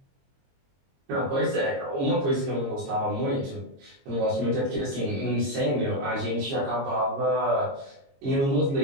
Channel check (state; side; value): late; left; 22 ms